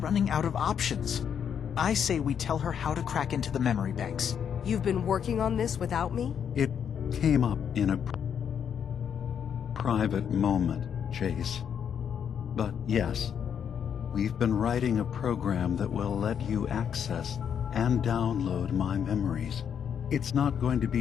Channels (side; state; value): right; quieter; 8.0 dB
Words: out of options. I say we tell her how to crack into the memory banks. You've been working on this without me? It came up in a private moment, Chase. But yes, we've been writing a program that will let you access and download my memories. It's not going to